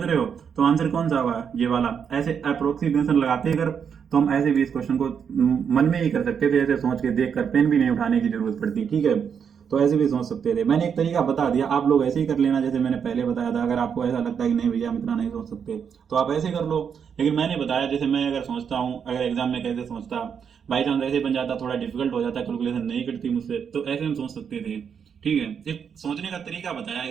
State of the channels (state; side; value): quieter; left; 7.2 dB